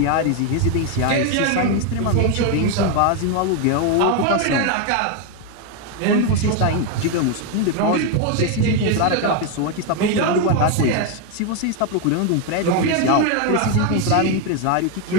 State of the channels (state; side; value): different; both; correlation 0.01